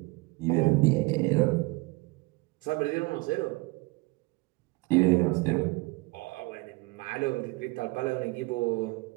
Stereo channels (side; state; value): left; quieter; 24.3 dB